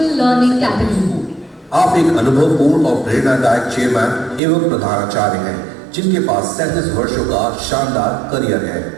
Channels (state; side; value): drops out; left; at 4.4 s